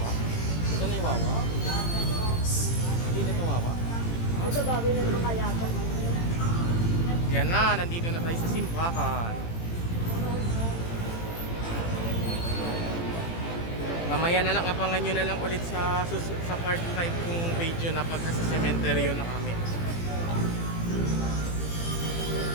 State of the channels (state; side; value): late; right; 18 ms